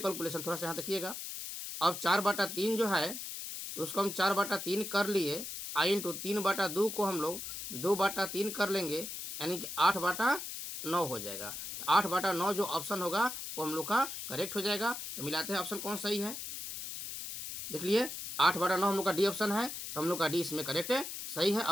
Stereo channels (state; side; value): noise; left; hiss, 7 dB below the sound